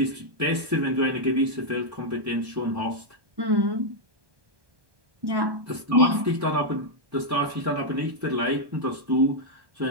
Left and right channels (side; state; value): left; late; 1.2 ms